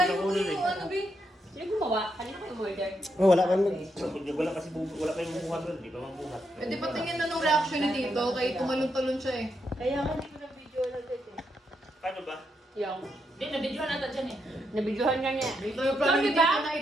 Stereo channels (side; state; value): both; normal; correlation 0.80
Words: Nakunan eh. yung ano, Bi? Sino gumawa? Kanina ko yung order. Oh, wala kang mag... Wala kasi wala kayong bubuhat doon. Di ba mabuhat? Pwede patingin na nung reaction ni Tito, kay tumalon-talon siya eh. Paano ba? Yung. Hindi, nabidyohan natin dyan eh. Nabidyohan nga niya. Ito yung plano ni Diba? Tito na